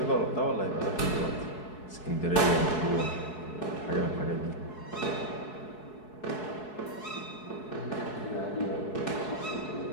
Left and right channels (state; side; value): late; right; 4.7 ms